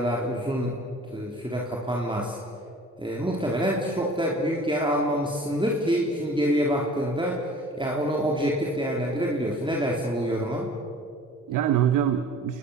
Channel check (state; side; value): normal; both; correlation 0.46